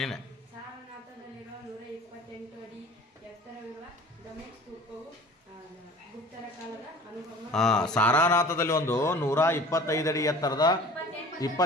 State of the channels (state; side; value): normal; both; correlation 0.45